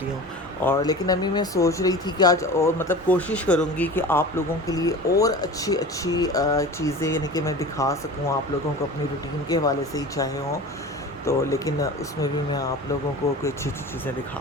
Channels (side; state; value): both; normal; correlation 0.36